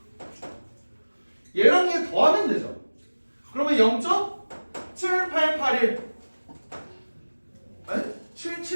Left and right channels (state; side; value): inverted; both; correlation -1.00